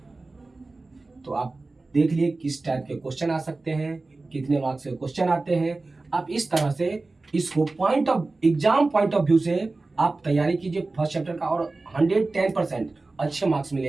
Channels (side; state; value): left; quieter; 3.4 dB